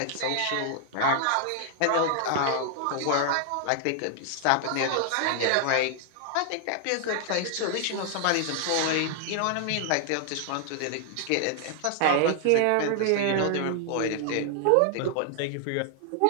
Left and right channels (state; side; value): different; both; correlation 0.00